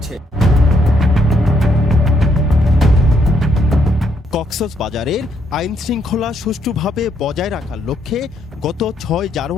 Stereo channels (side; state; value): both; normal; correlation 0.74